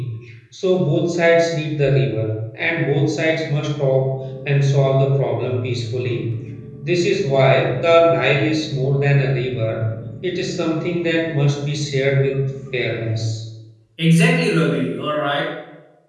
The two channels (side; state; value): both; identical; correlation 1.00